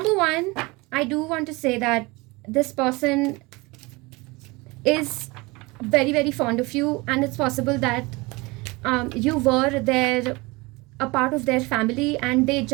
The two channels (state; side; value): quieter; left; 24.3 dB